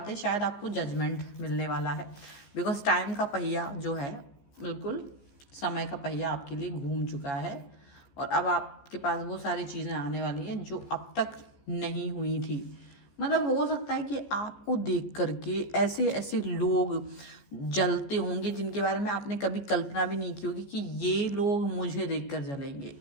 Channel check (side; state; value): right; late; 14 ms